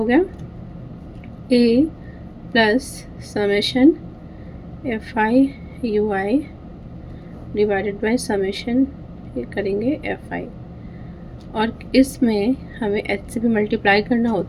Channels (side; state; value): both; identical; correlation 1.00